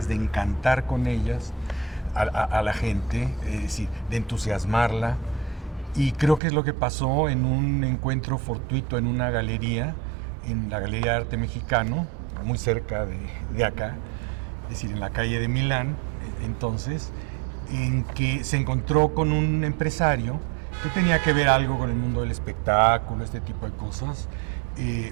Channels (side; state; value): left; drops out; at 6.4 s